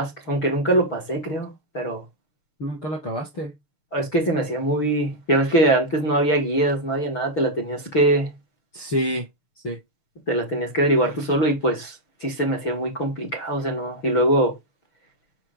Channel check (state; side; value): late; right; 6.6 ms